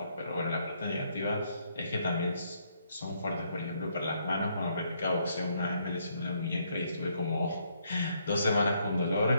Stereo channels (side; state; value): both; inverted; correlation -0.72